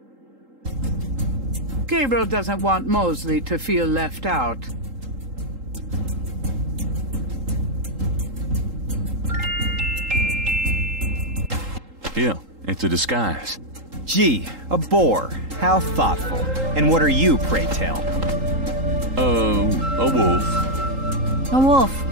Gabriel doesn't want Mosley to feel left out. Yeah, it's a disguise. Gee, a boar. How thoughtful. And what are you, pray tell? A wolf. A wolf.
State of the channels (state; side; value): late; left; 3.8 ms